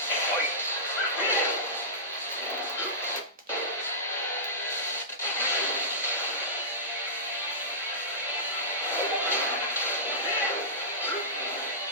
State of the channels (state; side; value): normal; both; correlation -0.18